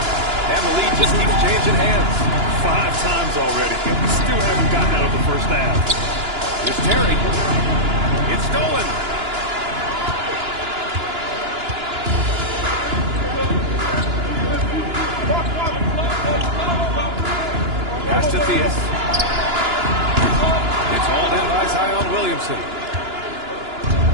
And the lead just keeps changing hands. 5 times already, and we still haven't gotten out of the first half. Here's Terry. It's stolen. Pass to Theus. It's hauled in by Zion Williamson.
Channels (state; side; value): late; left; 2.9 ms